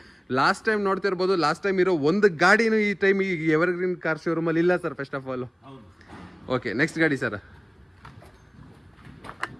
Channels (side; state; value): both; identical; correlation 1.00